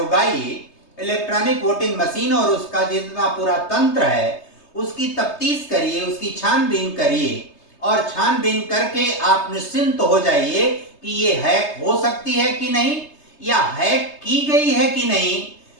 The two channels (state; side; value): late; right; 3.2 ms